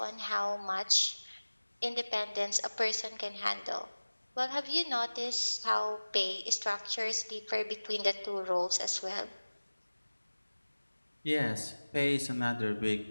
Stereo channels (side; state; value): both; inverted; correlation -1.00